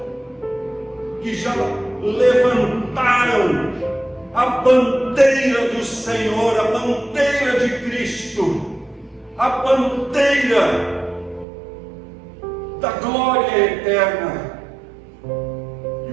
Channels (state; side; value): drops out; left; at 11.5 s